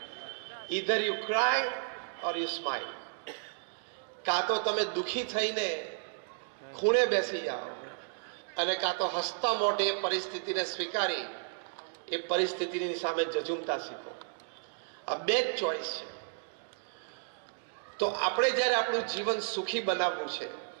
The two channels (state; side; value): silent; left; digital silence